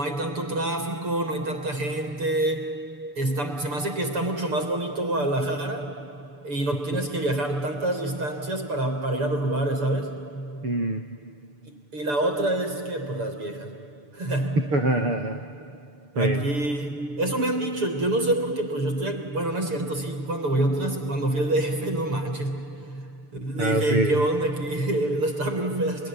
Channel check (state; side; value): late; left; 6.9 ms